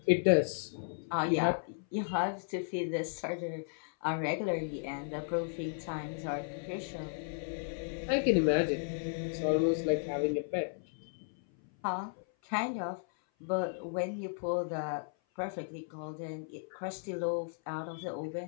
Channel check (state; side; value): silent; right; 55 dB below the other